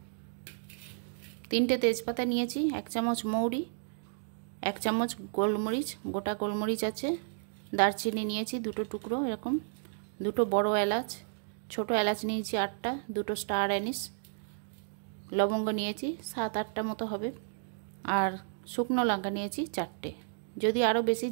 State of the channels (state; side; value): silent; left; digital silence